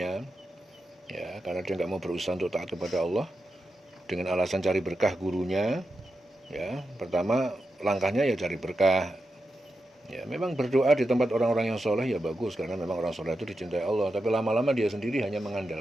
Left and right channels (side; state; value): both; normal; correlation 0.89